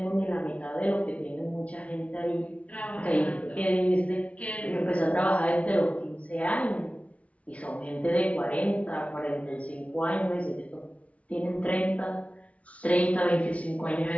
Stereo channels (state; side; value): late; right; 0.065 ms